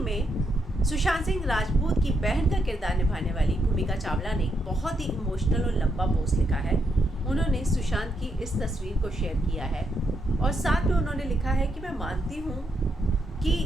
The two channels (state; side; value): normal; both; correlation 0.79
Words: सुशांत सिंह राजपूत की बहन का किरदार निभाने वाली भूमिका चावला ने बहुत ही इमोशनल और लंबा पोस्ट लिखा है। उन्होंने सुशांत की इस तस्वीर को शेयर किया है और साथ में उन्होंने लिखा है कि मैं मानती हूँ कि